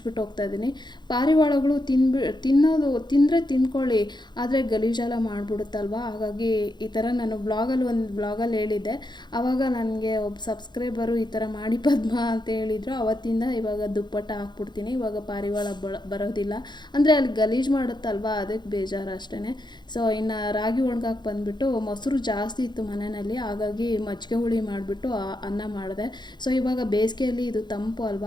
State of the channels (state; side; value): late; right; 0.21 ms